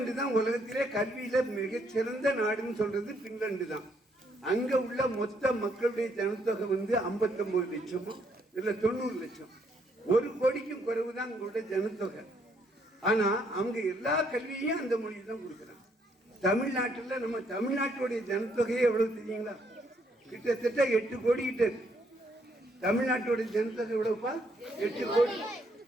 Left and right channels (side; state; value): both; normal; correlation 0.71